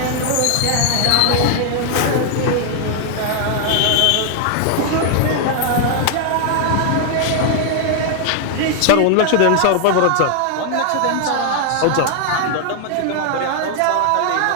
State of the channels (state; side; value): different; both; correlation 0.00